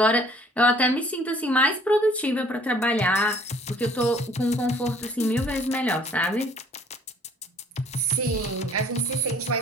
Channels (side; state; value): both; normal; correlation 0.57